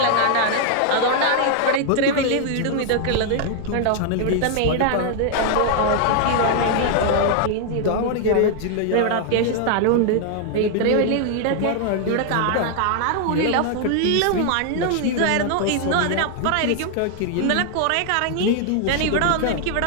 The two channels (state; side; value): different; both; correlation 0.00